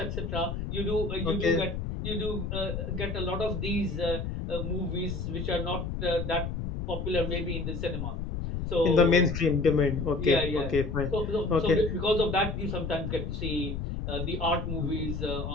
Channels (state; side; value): noise; left; rumble, 4 dB below the sound